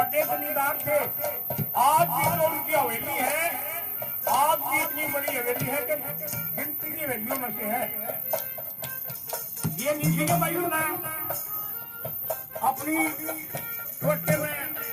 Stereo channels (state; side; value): identical; both; correlation 1.00